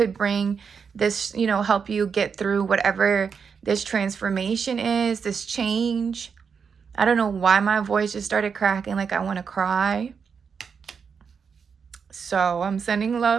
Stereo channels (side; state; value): left; quieter; 6.2 dB